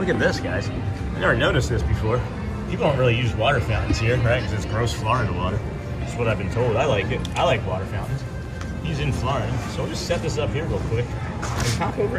at this, guys. I never noticed this before. People don't really use water fountains here, right? Because it's gross Florida water. That's what I've been told. I like it. I like water fountains. He's in Florida. So we'll just set this up here real quick and pop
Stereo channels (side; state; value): both; identical; correlation 1.00